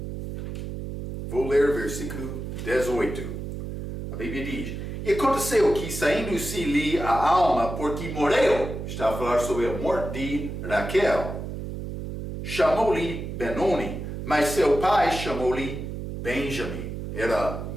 Vou ler versículo 18. A Bíblia diz, e aconteceu que, saindo-se-lhe a alma, porque morreu, está a falar sobre a morte de Raquel, chamou-lhe Benoni, mas seu pai chamou-lhe Benjamim. Era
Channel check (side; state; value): right; noise; hum, 7 dB below the sound